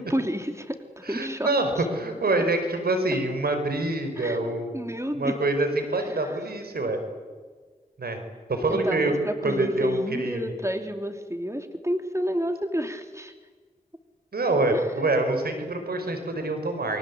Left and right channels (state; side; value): normal; both; correlation 0.55